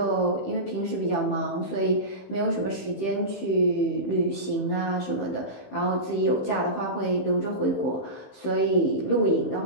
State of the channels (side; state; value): right; late; 15 ms